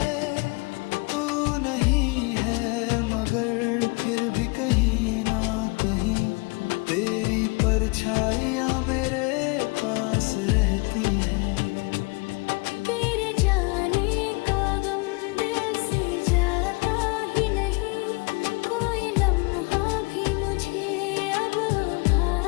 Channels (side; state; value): right; quieter; 29.4 dB